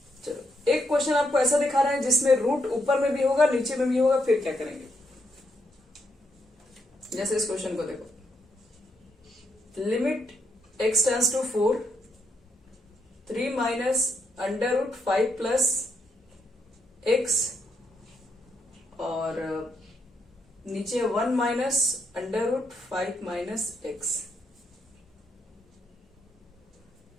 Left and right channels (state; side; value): normal; both; correlation 0.78